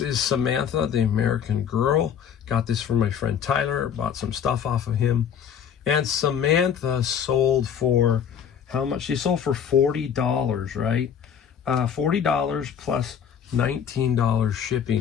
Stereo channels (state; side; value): quieter; right; 8.1 dB